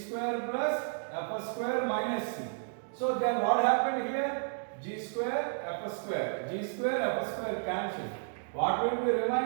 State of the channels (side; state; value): left; silent; digital silence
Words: plus F square minus C. So then what happened here? G square, F square, G square, F square cancel. What will be